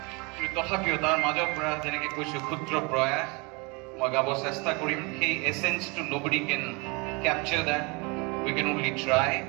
কিন্তু তথাপিও তাৰ মাজৰ পৰা যেনেকৈ কৈছোঁ ক্ষুদ্ৰ প্ৰয়াস মই গাব চেষ্টা কৰিম। সেই এছেঞ্চটো nobody can capture that, we can only try.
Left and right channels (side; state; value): left; quieter; 29.3 dB